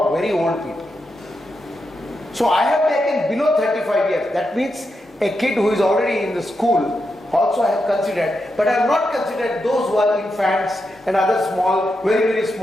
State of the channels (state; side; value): normal; both; correlation 0.86